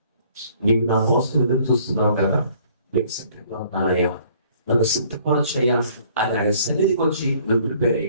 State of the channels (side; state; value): both; inverted; correlation -0.59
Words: నీవు నా కోసం ఎదురు చూస్తున్నావు కదా, నీకు సిద్ధంగా ఉన్నానయ్యా, నన్ను సిద్ధపరచయ్యా అని ఆయన సన్నిధికి వచ్చి నువ్వు ప్రిపేర్